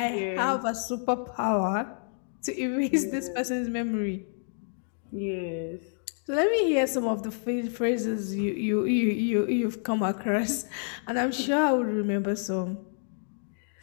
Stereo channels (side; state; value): right; silent; digital silence